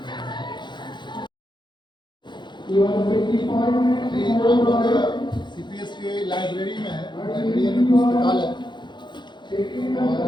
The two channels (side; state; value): right; late; 0.22 ms